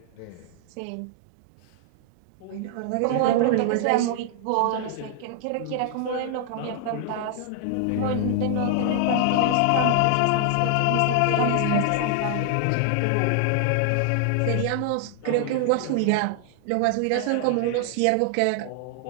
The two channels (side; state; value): both; different; correlation 0.00